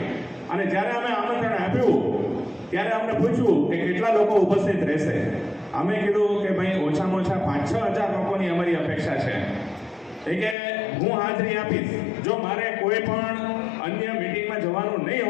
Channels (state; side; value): drops out; right; at 10.6 s